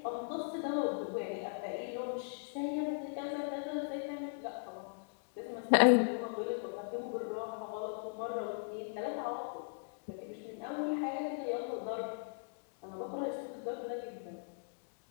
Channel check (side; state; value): right; silent; digital silence